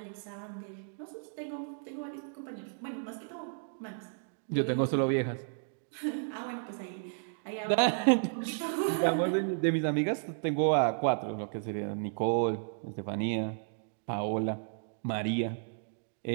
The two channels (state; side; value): silent; left; digital silence